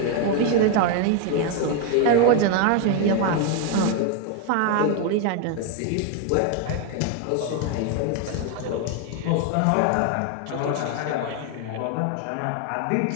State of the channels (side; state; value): both; different; correlation 0.01